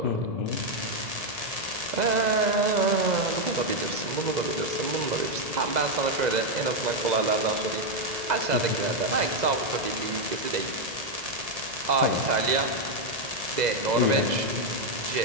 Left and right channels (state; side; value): late; left; 2.0 ms